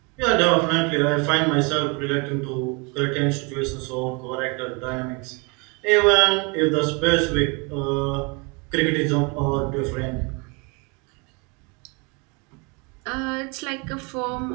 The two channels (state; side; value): quieter; left; 30.8 dB